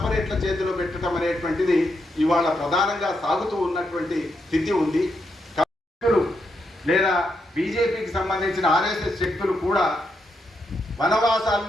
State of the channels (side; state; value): both; normal; correlation 0.81